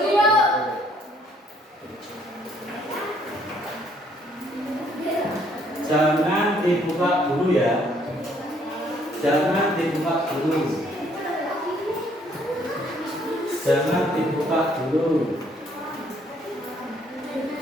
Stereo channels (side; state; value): both; normal; correlation 0.65